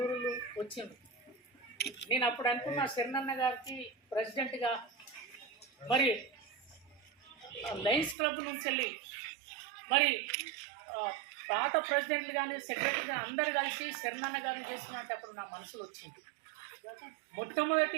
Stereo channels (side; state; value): left; drops out; at 8.2 s